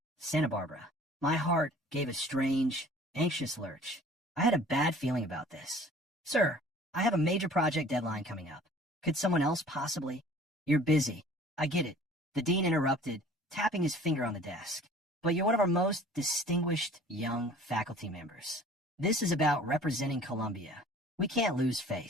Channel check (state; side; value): normal; both; correlation 0.49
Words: Santa Barbara. My heart gave a strange, anxious lurch. I had a bad feeling about this. "Sir, I have a major project deadline coming up. Could someone else possibly?" "You're busy." "I get it," the dean interrupted, tapping his finger on the desk. "But you're one of our most distinguished young faculty members. This is about representing Columbia. We can't lose